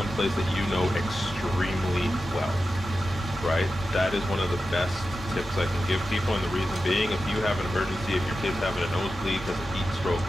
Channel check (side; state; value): both; normal; correlation 0.92